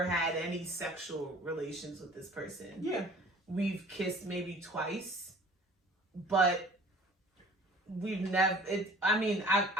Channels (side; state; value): both; normal; correlation 0.49